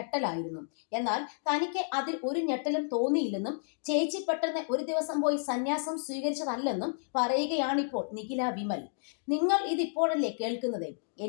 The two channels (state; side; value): silent; right; digital silence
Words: എന്നാൽ തനിക്ക് അതിൽ ഒരു ഞെട്ടലും തോന്നിയില്ലെന്നും ചേച്ചി പെട്ടെന്ന് ഒരു ദിവസം പോയി സന്യാസം സ്വീകരിച്ചതല്ലെന്നും പറയുകയാണിപ്പോൾ നിഖില വിമൽ. നിങ്ങൾ ഇതിപ്പോഴല്ലേ കേൾക്കുന്നത്?